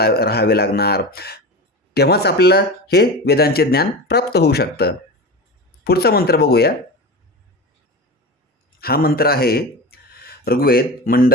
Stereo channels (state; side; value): normal; both; correlation 0.27